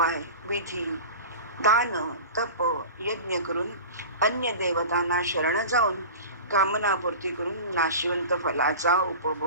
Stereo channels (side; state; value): both; inverted; correlation -0.35